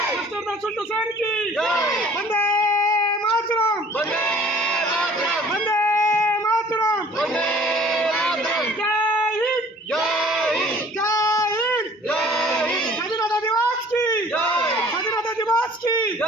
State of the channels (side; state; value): both; normal; correlation 0.52